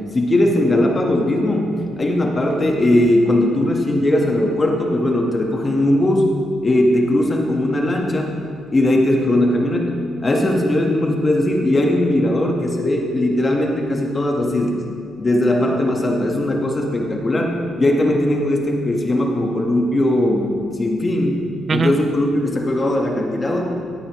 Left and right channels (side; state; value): left; noise; hum, 30 dB below the sound